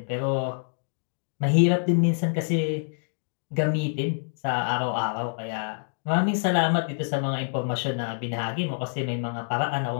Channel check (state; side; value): silent; right; digital silence